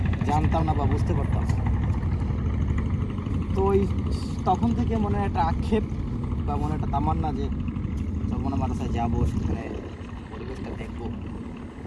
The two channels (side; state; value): both; identical; correlation 1.00